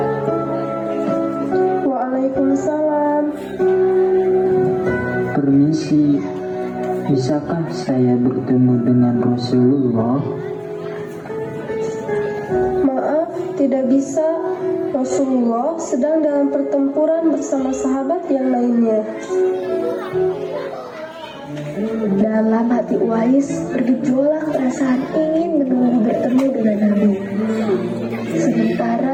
Waalaikumsalam. Permisi, bisakah saya bertemu dengan Rasulullah? Maaf, tidak bisa. Rasulullah sedang dalam pertempuran bersama sahabat yang lainnya. Dalam hati Uwais bergejolak perasaan ingin menunggu bertemu dengan Nabi.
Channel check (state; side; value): identical; both; correlation 1.00